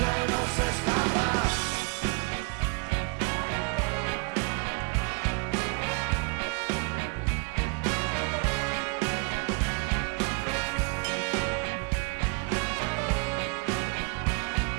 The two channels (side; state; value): left; quieter; 31.6 dB